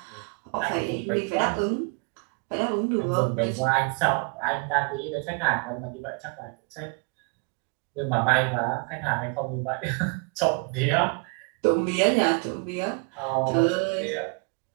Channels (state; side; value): quieter; left; 34.2 dB